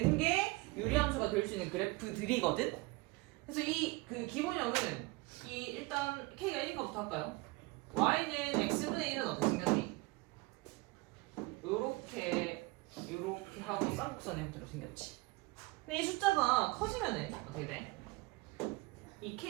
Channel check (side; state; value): left; quieter; 23.1 dB